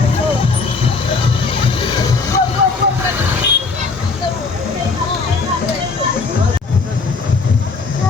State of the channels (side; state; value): right; quieter; 4.3 dB